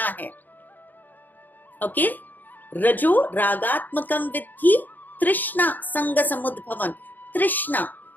है. Okay? Rajo ragatmakam vidhi trishna sanga samudbhavan. Trishna.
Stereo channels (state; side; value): late; right; 0.087 ms